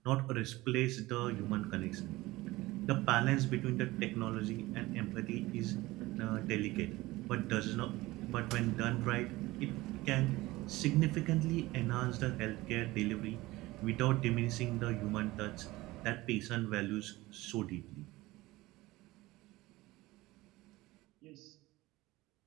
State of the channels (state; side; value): quieter; left; 19.3 dB